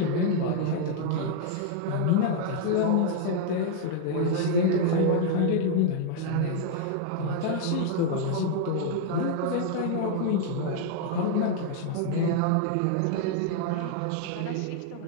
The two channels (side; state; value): both; different; correlation -0.01